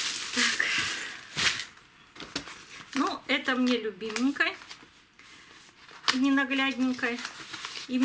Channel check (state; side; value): identical; both; correlation 1.00